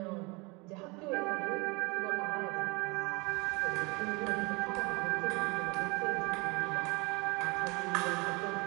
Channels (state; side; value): quieter; left; 27.1 dB